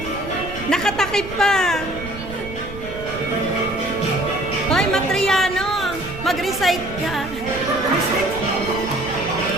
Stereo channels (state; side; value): noise; right; rumble, 12 dB below the sound